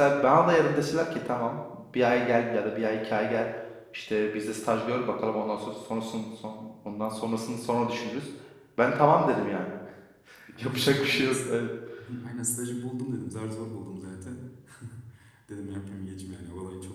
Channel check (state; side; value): identical; both; correlation 1.00